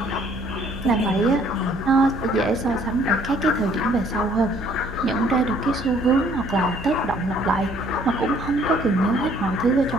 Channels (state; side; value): noise; left; hum, 16 dB below the sound